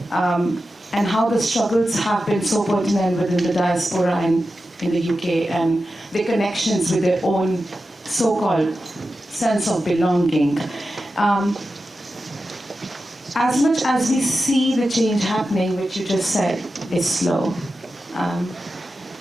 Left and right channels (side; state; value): both; normal; correlation 0.92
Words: and how the struggles have been so pertinent within the diaspora and in the UK, and the connections with their own so-called sense of belonging. As much as we see the change happening, which you just said is slow,